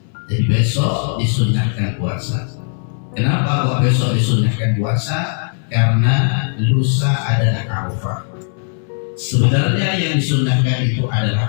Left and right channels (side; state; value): right; silent; 63 dB below the other